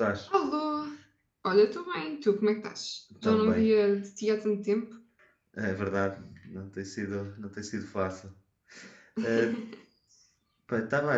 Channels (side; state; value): both; identical; correlation 1.00